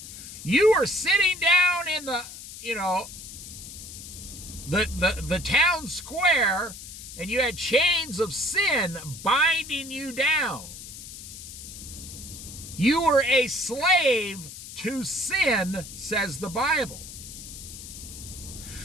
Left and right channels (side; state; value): left; noise; hiss, 13 dB below the sound